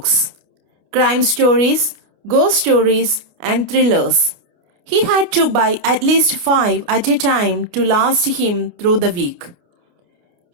crime stories, ghost stories, and thrillers. He had to buy at least 5 at a time to last him through the week.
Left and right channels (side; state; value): left; late; 29 ms